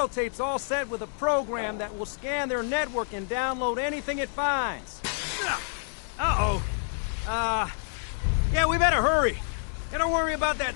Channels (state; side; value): silent; right; digital silence